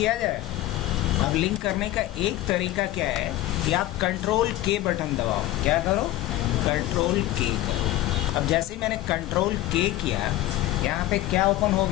जाए। अब लिंक करने का एक तरीका क्या है कि आप कंट्रोल के बटन दबाओ। क्या करो, कंट्रोल के करो। अब जैसे ही मैंने कंट्रोल के किया, यहाँ पे क्या ओपन हो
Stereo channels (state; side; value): quieter; right; 15.3 dB